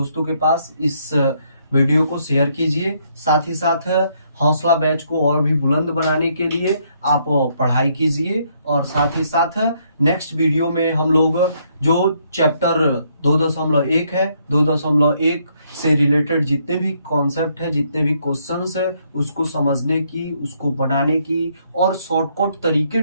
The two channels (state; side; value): inverted; both; correlation -0.71